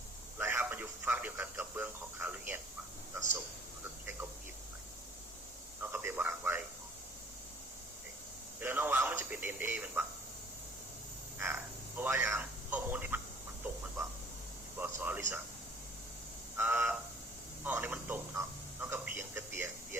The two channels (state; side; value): normal; both; correlation 0.53